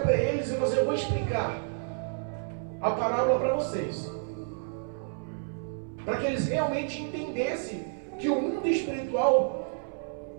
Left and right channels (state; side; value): silent; left; 58 dB below the other